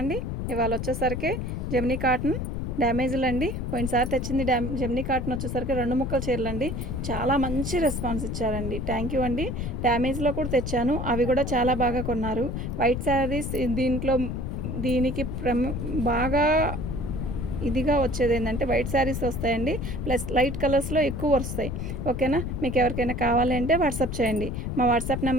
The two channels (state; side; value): noise; left; rumble, 3 dB below the sound